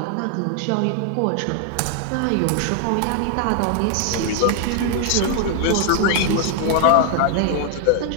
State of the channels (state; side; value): different; both; correlation 0.00